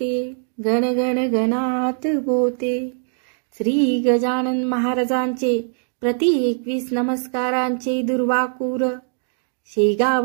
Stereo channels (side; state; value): left; silent; 55 dB below the other